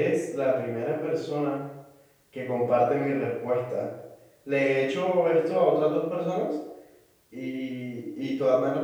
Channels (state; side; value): identical; both; correlation 1.00